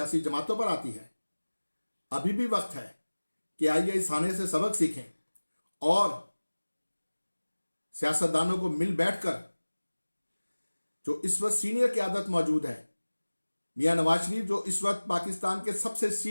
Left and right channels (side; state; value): both; inverted; correlation -1.00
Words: जमातों पर आती है। अभी भी वक्त है कि आइए इस हाने से सबक सीखें اور سیاستدانوں کو مل بیٹھ کر جو اس وقت سینئر قیادت موجود ہے، میاں نواز شریف جو اس وقت پاکستان کے سب سے